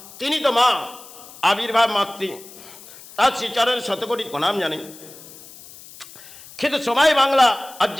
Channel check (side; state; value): left; noise; hiss, 19 dB below the sound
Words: তিনি তো মা, আবির্ভাব মাতৃ, তার শ্রীচরণের শতকোটি প্রণাম জানে। কিন্তু সময় বাংলা আজ